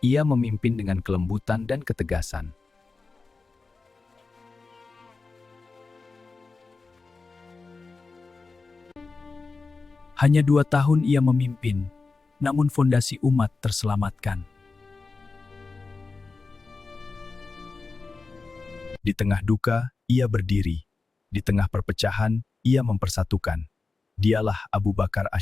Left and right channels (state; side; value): quieter; right; 4.1 dB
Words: Ia memimpin dengan kelembutan dan ketegasan. Hanya 2 tahun ia memimpin, namun fondasi umat terselamatkan. Di tengah duka, ia berdiri. Di tengah perpecahan, ia mempersatukan. Dialah Abu Bakar